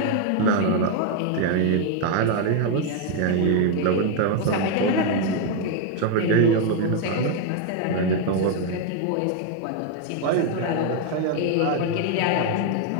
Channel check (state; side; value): different; both; correlation 0.00